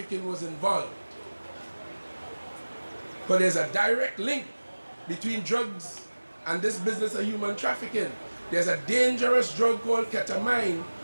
was involved. But there's a direct link between drugs and this business of human trafficking. There's a dangerous drug called ketamine,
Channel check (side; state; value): both; inverted; correlation -1.00